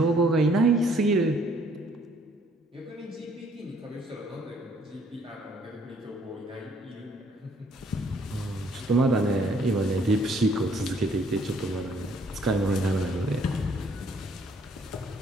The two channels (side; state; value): both; normal; correlation 0.64